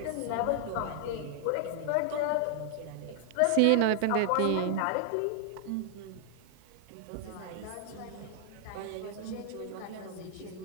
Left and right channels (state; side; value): different; both; correlation 0.00